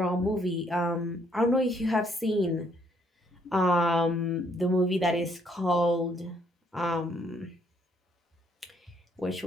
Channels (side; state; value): both; normal; correlation 0.69